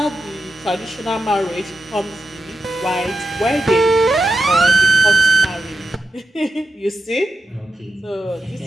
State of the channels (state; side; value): normal; both; correlation 0.89